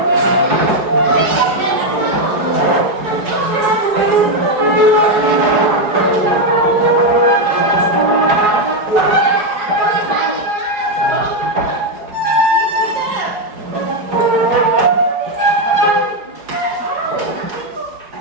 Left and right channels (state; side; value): late; left; 4.8 ms